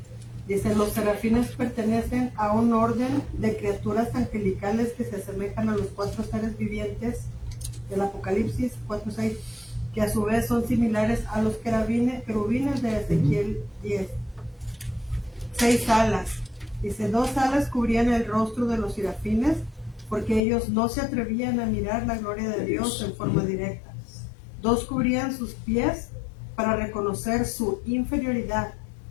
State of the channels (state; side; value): drops out; right; at 20.4 s